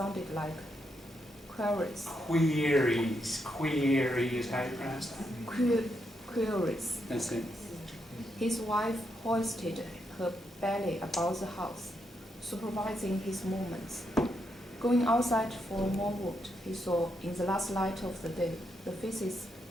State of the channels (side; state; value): both; normal; correlation 0.80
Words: like queries. Queries is how you pronounce that? Queries. That's it. His wife hoisted her belly about the house, supervising his movements. Going outside for more wood, he saw, in the last light of the day, the faces